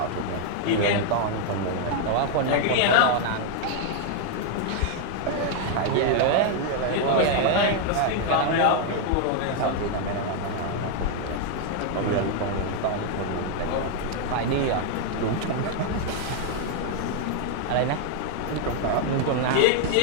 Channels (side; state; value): both; different; correlation 0.00